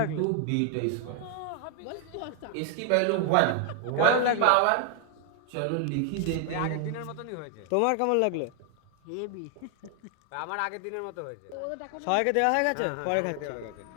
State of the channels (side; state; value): both; different; correlation 0.00